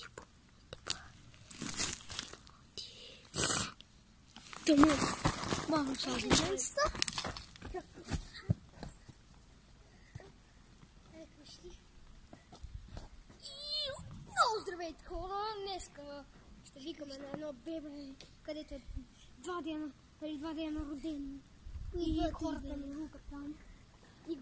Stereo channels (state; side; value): identical; both; correlation 1.00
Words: Мама, много здравейте хора! Днеска ще викаме на едно бебе, където е 2 дена роден. И хората ми рукат там. И